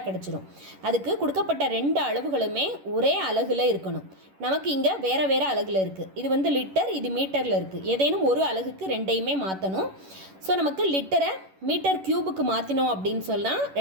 கிடைச்சிரும். அதுக்கு கொடுக்கப்பட்ட ரெண்டு அளவுகளுமே ஒரே அலகுல இருக்கணும். நமக்கு இங்கே வேற வேற அலகுல இருக்குது. இது லிட்டர், இது மீட்டரில் இருக்குது. ஏதேனும் ஒரு அலகுக்கு ரெண்டையுமே மாற்றணும். ஸோ நமக்கு லிட்டரை மீட்டர் கியூபுக்கு மாற்றினோம் அப்படின்னு சொன்னால்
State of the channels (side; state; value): left; late; 11 ms